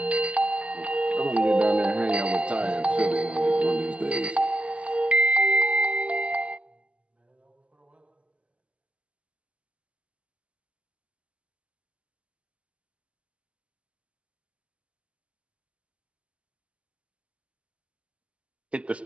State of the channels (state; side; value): late; left; 0.060 ms